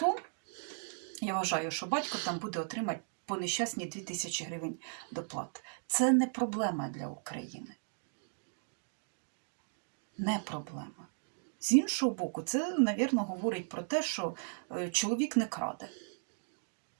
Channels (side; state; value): left; silent; digital silence